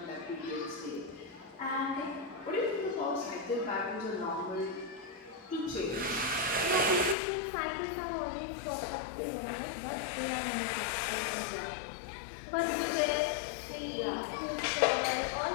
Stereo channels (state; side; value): drops out; right; at 7.2 s